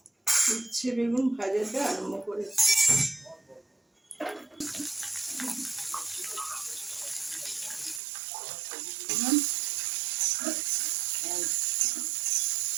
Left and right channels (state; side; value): drops out; left; at 8.0 s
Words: উচ্ছে বেগুন ভাজাটা আরম্ভ করেছি।